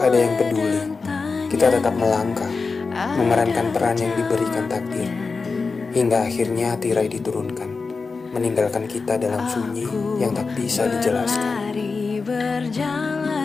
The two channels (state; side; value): quieter; right; 4.4 dB